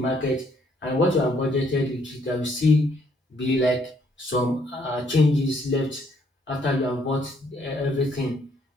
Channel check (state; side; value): normal; both; correlation 0.68